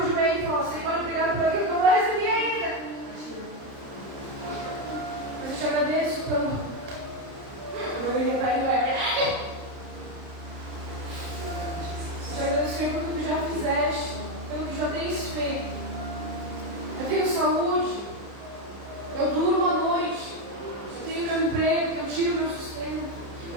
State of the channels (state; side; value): late; left; 30 ms